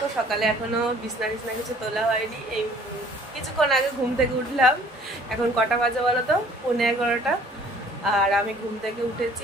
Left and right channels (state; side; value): normal; both; correlation 0.54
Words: সকালে এখনো বিছনা টিছনা কিছু তোলা হয়নি। এই কিছুক্ষণ আগে ঘুম থেকে উঠলাম। এখন কটা বাজে বলো তো? 11:15। আর আমি ঘুম থেকে উঠেছি